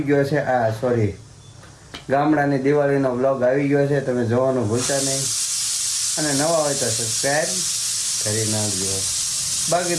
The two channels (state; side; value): identical; both; correlation 1.00